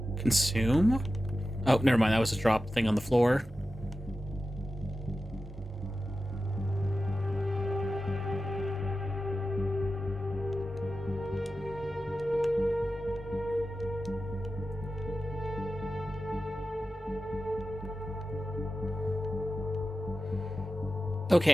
Consume? Oh, never mind. That was a drop thing on the floor.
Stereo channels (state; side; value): normal; both; correlation 0.93